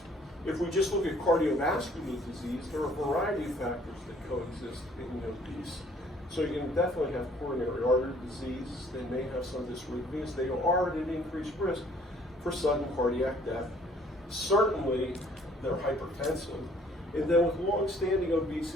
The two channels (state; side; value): normal; both; correlation 0.59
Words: If we just look at cardiovascular disease, there are a variety of factors that coexist in the obese. So you can definitely have coronary artery disease. They may have some dysrhythmias. They are at an increased risk for sudden cardiac death. Certainly, they're hypertensive. And then with long-standing